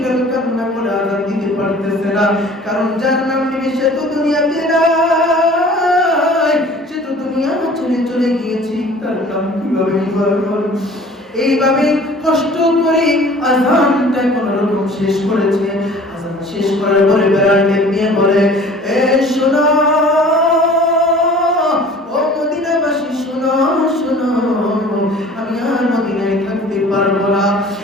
কান্না করে আযান দিতে পারতেছে না, কারণ যার নাম নিবে সে তো দুনিয়াতে নাই, সে তো দুনিয়া ছেড়ে চলে গিয়েছে, তার নাম কিভাবে বলবো? এইভাবে কষ্ট করে আযানটা কোন রকম শেষ করেছে। আযান শেষ করার পরে বিলাল নিয়ে বলে, এ শোনো ও মদিনাবাসী, শোনো শোনো, আমি আর মদিনায় থাকতে পারবো না,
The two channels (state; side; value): normal; both; correlation 0.48